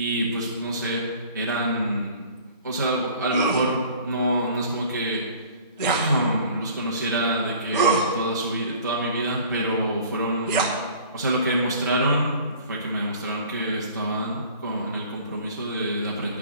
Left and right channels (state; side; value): inverted; both; correlation -0.48